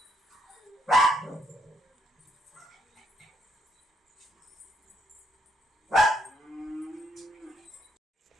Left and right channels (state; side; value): normal; both; correlation 0.73